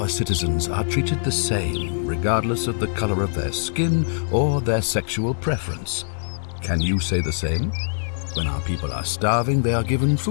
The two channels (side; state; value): right; silent; digital silence